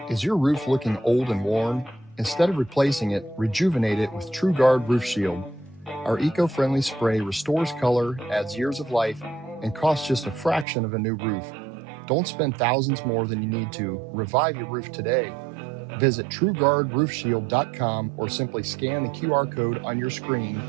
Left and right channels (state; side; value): drops out; left; at 10.7 s